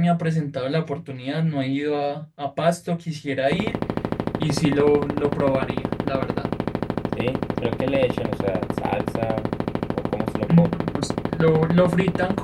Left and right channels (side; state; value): both; identical; correlation 1.00